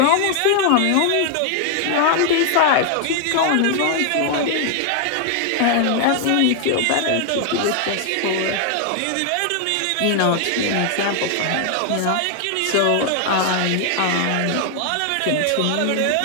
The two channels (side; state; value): both; different; correlation 0.00